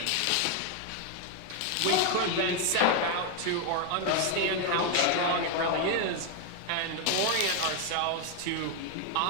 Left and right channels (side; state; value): both; different; correlation 0.01